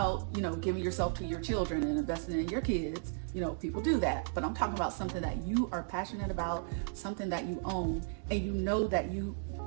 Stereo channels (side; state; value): left; silent; digital silence